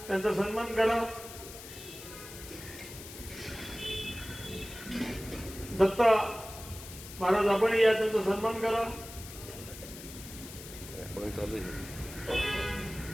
त्यांचा सन्मान करा. दत्ता महाराज आपण या, त्यांचा सन्मान करा.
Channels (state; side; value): noise; left; hiss, 14 dB below the sound